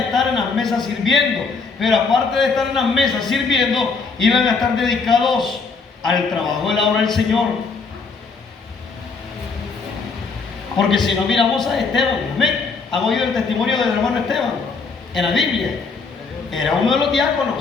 en las mesas sirviendo. Pero aparte de estar en las mesas sirviendo, iban a estar dedicados al trabajo de la obra del Señor. Porque si no miramos a Esteban, ¿amén? ¿Han oído el testimonio del hermano Esteban en la Biblia? Era uno de los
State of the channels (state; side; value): quieter; right; 4.6 dB